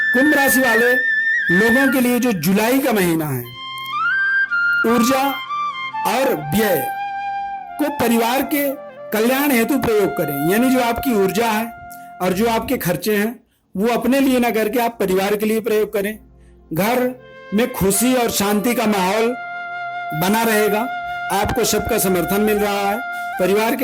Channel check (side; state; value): both; identical; correlation 1.00